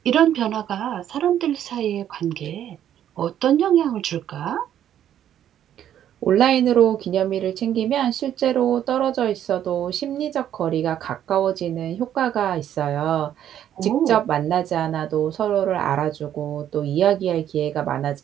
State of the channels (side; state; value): left; quieter; 10.6 dB